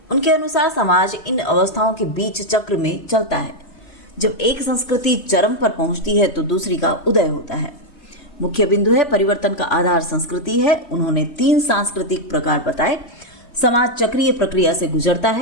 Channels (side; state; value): right; late; 3.2 ms